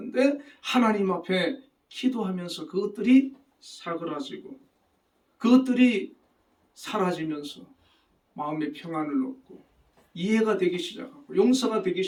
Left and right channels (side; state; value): both; identical; correlation 1.00